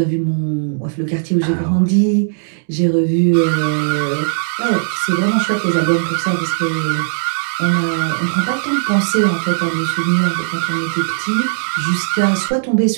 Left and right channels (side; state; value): left; silent; digital silence